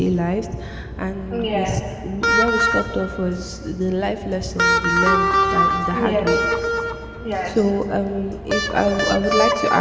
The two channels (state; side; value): identical; both; correlation 1.00